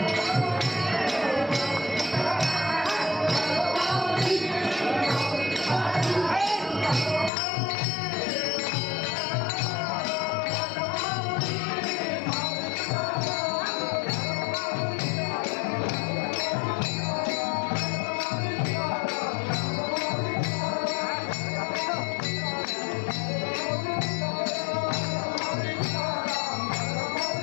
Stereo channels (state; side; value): drops out; right; at 7.3 s